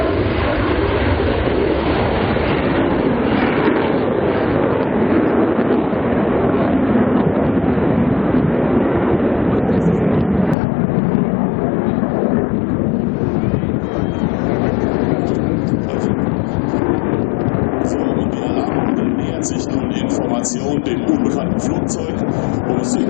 Dem unbekannten Flugzeug, um es zu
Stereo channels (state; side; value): drops out; right; at 10.6 s